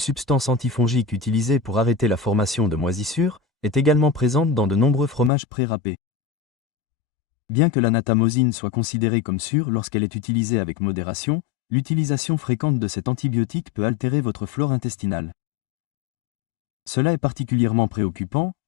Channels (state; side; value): drops out; right; at 5.3 s